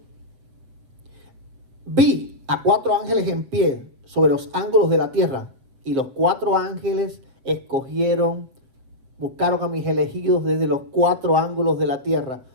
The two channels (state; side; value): late; left; 7.6 ms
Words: vi a 4 ángeles en pie sobre los ángulos de la tierra. Y los 4 ángeles buscaron a mis elegidos desde los 4 ángulos de la tierra.